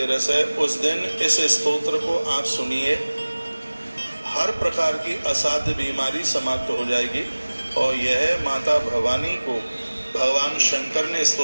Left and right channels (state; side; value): inverted; both; correlation -1.00